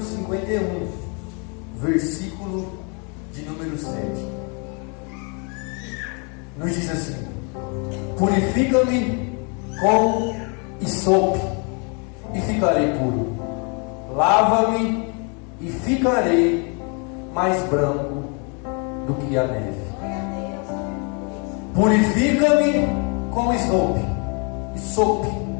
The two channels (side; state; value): right; quieter; 35.4 dB